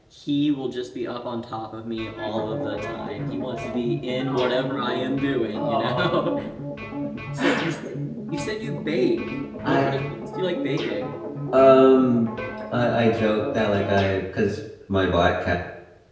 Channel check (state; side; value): identical; both; correlation 1.00